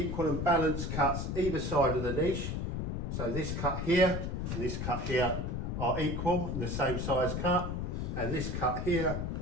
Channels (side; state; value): left; noise; rumble, 2 dB below the sound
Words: and balanced cuts either side of the niche. So this cut here and this cut here are equal and the same size cut, and this cut here